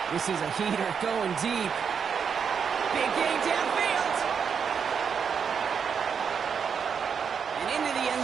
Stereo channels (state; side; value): quieter; left; 6.7 dB